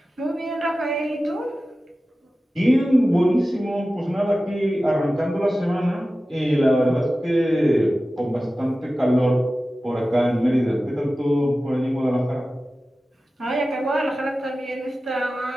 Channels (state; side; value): normal; both; correlation 0.95